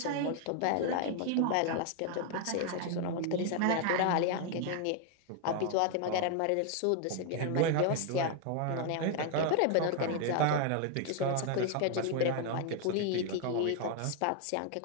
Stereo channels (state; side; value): different; both; correlation 0.01